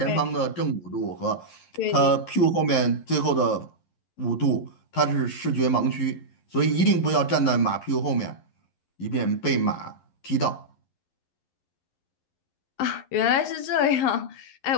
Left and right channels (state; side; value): late; right; 11 ms